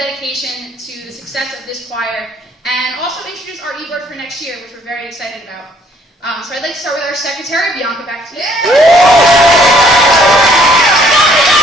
to the success of this choir, and also introduce our e-board for next year, which we're very excited about. So I'd like to start with our secretary, Bianca, back to you.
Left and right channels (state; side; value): normal; both; correlation 0.63